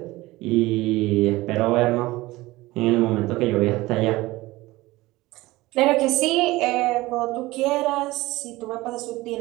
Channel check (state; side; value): quieter; left; 19.4 dB